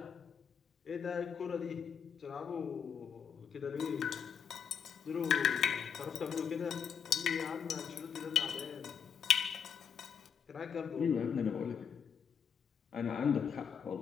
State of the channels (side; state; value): right; quieter; 7.5 dB